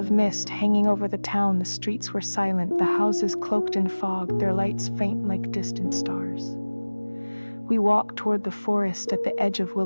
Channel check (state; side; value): inverted; both; correlation -1.00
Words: mist hanging over the town. The streets were silent, the houses cloaked in fog, their lights faint like distant stars. We walked toward the forest at the edge of